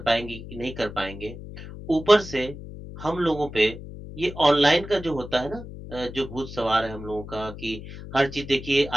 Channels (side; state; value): left; noise; hum, 12 dB below the sound